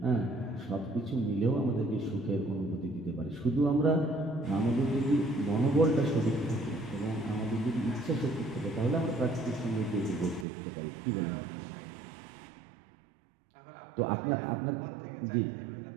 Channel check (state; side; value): drops out; left; at 10.5 s